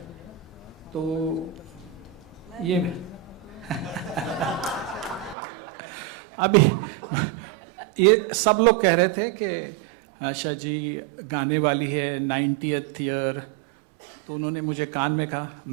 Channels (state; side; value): drops out; left; at 5.4 s